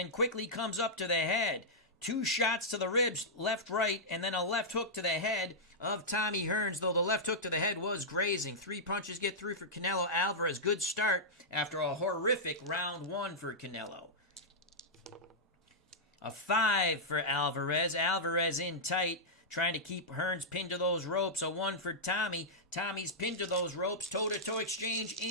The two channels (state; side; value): normal; both; correlation -0.10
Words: quickly comes up to the head. 2 shots to the ribs, left, right, and then a left hook to the head of Tommy Hearns, though the left hook to the head was grazing. 3 punches get through for Canelo Alvarez. Good start after a horrific round 1 for Canelo. A 5 for Alvarez. Alvarez in tight, trying to keep Hearns pinned to those ropes. A 1 for Tommy. Tommy's pinned to those ropes. Toe-to-toe exchange